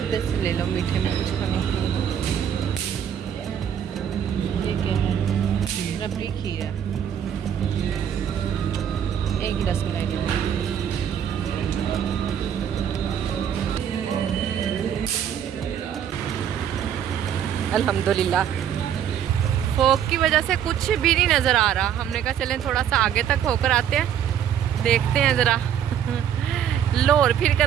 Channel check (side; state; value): left; quieter; 9.2 dB